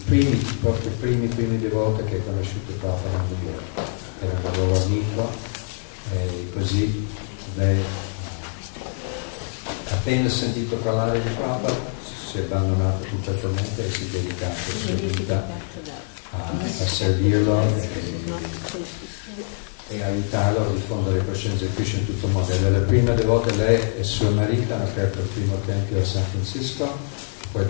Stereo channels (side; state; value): right; silent; 63 dB below the other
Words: proprio i primi devoti che ha conosciuto Prabhupada a New York. Era un loro amico e così lei, appena sentito parlare di Prabhupada, si è abbandonata completamente e si è dedicata la sua vita a servirlo e aiutarlo a diffondere coscienza di Krishna in tutto il mondo. La prima devota, lei e suo marito hanno aperto il primo tempio a San Francisco, poi